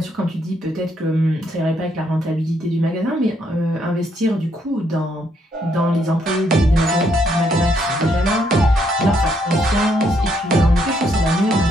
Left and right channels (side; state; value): both; normal; correlation 0.73